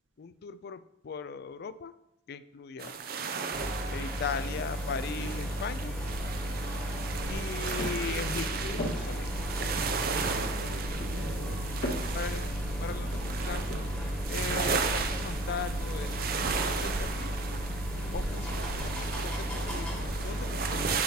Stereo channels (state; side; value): normal; both; correlation 0.46